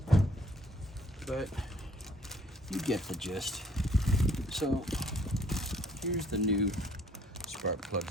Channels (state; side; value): normal; both; correlation 0.60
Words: But you get the gist. So here's the new spark